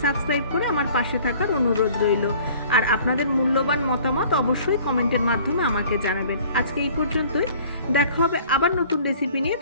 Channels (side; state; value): both; inverted; correlation -0.51